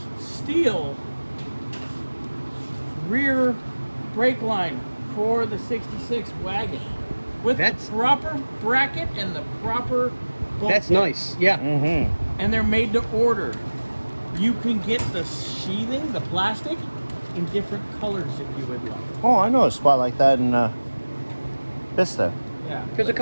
steel rear brake line for the 66 wagon with the proper bracket and the proper bulkhead. That's nice. Yeah. Mm-hmm. And they're made to order. You can get the sheathing, the plastic, in different colors if you would like. Oh, I know a spot like that in Vista. Yeah. There's a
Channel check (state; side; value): inverted; both; correlation -1.00